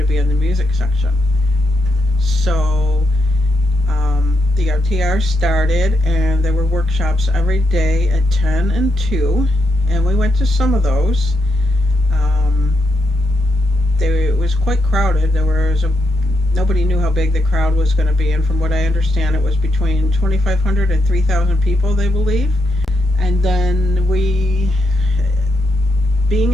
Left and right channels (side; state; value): both; normal; correlation 0.81